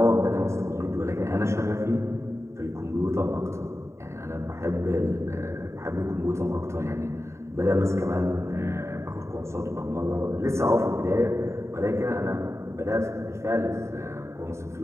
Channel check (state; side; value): late; left; 0.14 ms